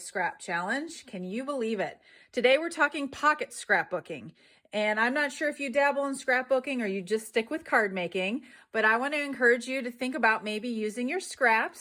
challenge. Can you believe it? Today we're talking pocket scrapbooking. And I'm not sure if you dabble in scrapbooking or you just stick with card making, but I want to encourage you to think about maybe using your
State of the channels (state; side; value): identical; both; correlation 1.00